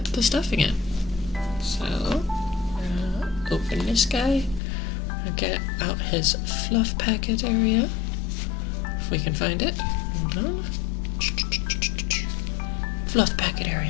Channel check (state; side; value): drops out; right; at 4.6 s